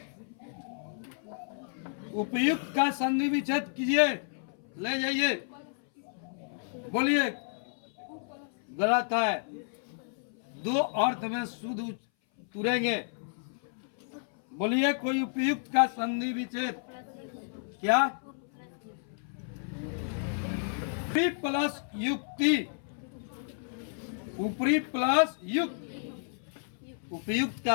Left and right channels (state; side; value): silent; right; 57 dB below the other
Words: उपयुक्त का संधि विच्छेद कीजिए, ले जाइए। बोलिए, गलत है। दो अर्थ में शुद्ध तुरेंगे। बोलिए, कोई उपयुक्त का संधि विच्छेद। क्या? ऊपरी प्लस युक्ति, ऊपरी प्लस युक्त। उपयुक्त